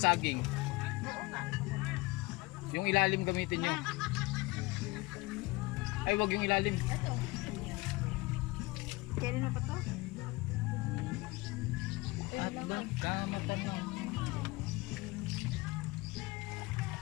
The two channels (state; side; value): quieter; right; 22.6 dB